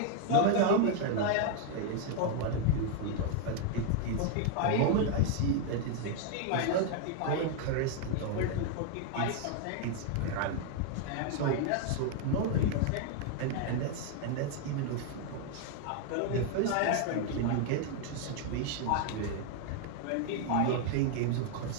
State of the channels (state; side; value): different; both; correlation 0.00